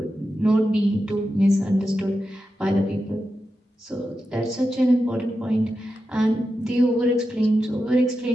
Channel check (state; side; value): normal; both; correlation 0.90